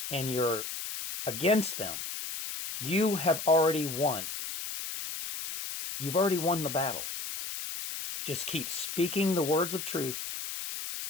and you're against them, you have already won. You've already won the battle. Just keep speaking the words of truth.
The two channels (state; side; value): noise; left; hiss, 6 dB below the sound